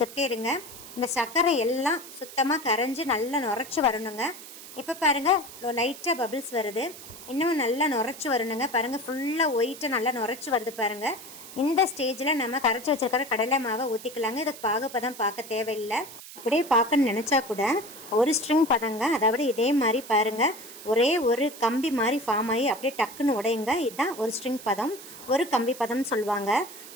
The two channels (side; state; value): right; noise; hiss, 15 dB below the sound